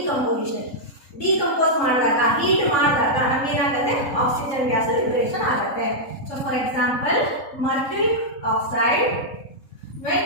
Decompose ಮಾಡಿದಾಗ, heat ಮಾಡಿದಾಗ ನಮಗೆ ಏನಾಗುತ್ತೆ? Oxygen gas liberation ಆಗುತ್ತೆ. So for example, mercuric oxide, when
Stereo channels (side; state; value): right; late; 3.7 ms